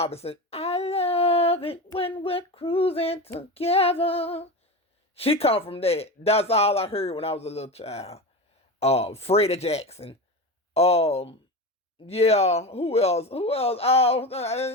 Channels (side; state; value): both; normal; correlation 0.24